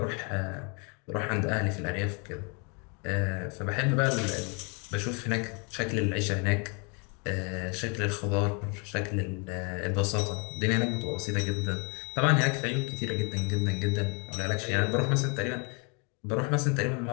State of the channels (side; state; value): right; quieter; 34.4 dB